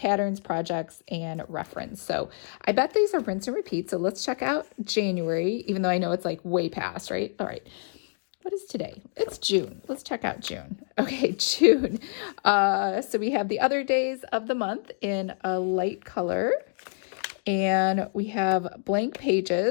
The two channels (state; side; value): silent; right; digital silence